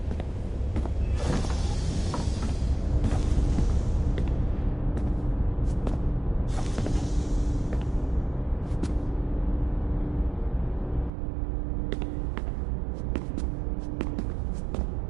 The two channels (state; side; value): drops out; left; at 11.1 s